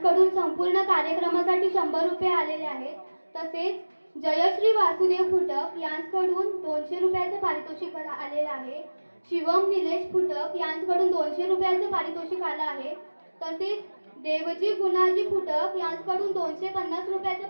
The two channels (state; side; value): inverted; both; correlation -1.00